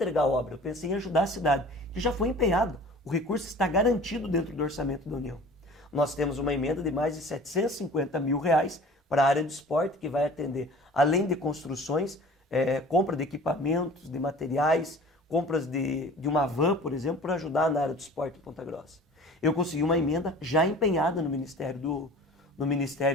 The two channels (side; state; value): both; normal; correlation 0.44